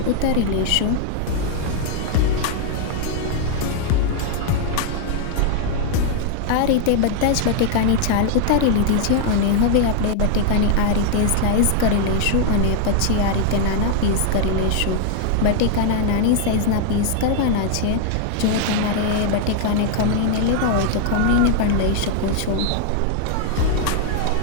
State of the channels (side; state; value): both; different; correlation 0.00